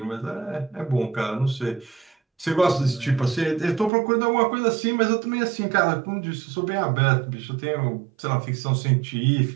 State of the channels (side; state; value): left; drops out; at 3.9 s